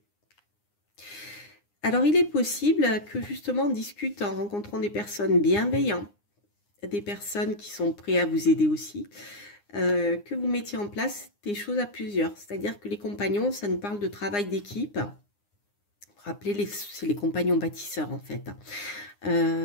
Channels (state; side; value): late; right; 9.8 ms